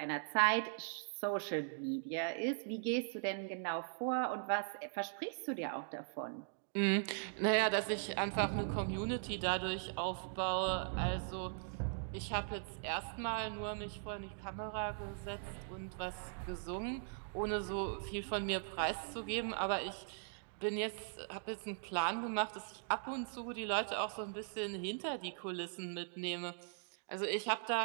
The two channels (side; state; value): left; silent; digital silence